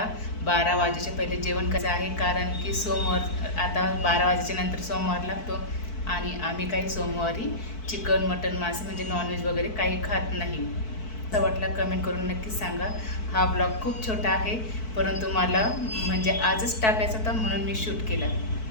12 वाजेच्या पहिले जेवण करायचं आहे, कारण की सोमवार आता 12 वाजेच्या नंतर सोमवार लागतो आणि आम्ही काही सोमवारी चिकन, मटन, मासे म्हणजे नॉनव्हेज वगैरे काही खात नाही. असं वाटलं कमेंट करून नक्कीच सांगा. हा ब्लॉग खूप छोटा आहे, परंतु मला म्हणजे आजच टाकायचा होता म्हणून मी शूट केला.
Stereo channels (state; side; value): late; right; 4.6 ms